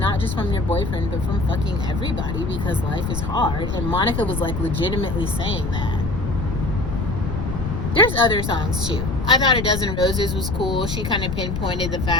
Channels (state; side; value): noise; left; rumble, 3 dB below the sound